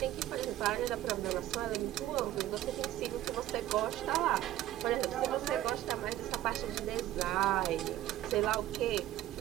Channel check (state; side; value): quieter; left; 13.8 dB